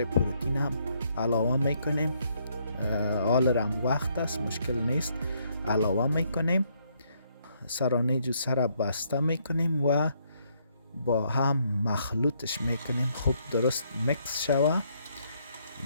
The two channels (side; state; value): both; inverted; correlation -0.71